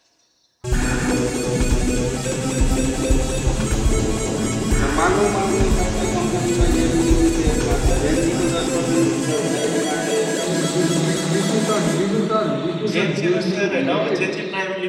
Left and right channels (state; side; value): identical; both; correlation 1.00